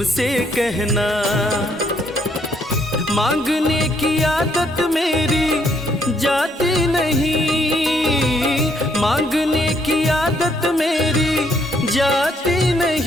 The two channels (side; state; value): both; normal; correlation 0.70